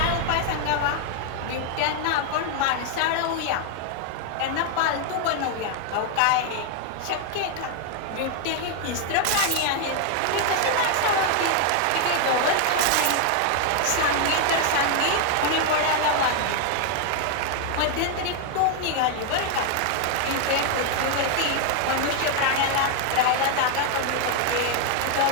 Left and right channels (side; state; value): both; different; correlation 0.00